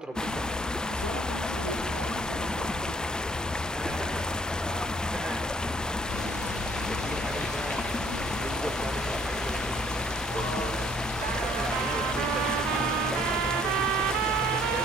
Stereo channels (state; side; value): normal; both; correlation 0.61